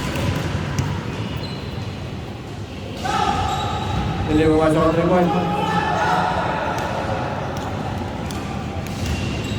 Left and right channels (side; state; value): both; identical; correlation 1.00